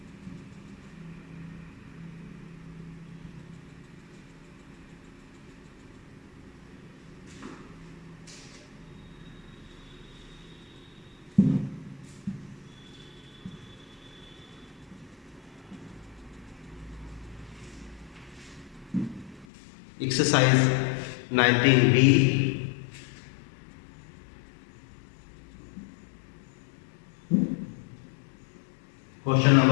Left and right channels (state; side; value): drops out; right; at 19.5 s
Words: Exercise 19b. Question